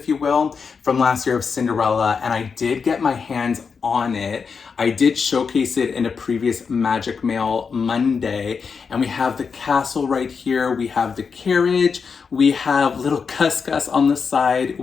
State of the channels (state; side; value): quieter; right; 5.6 dB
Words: you will, from last year of Cinderella. And I did get my hands on it. I did showcase it in a previous Magic Mail Monday. And we have the castle right here. We have the carriage. We have little Cuscus on the side.